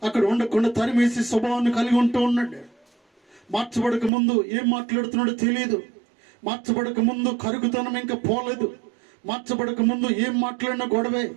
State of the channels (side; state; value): left; drops out; at 4.1 s